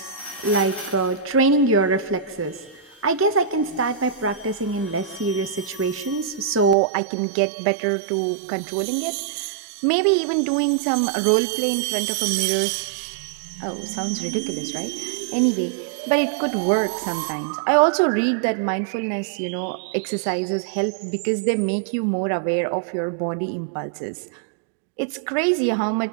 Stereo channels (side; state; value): left; drops out; at 6.8 s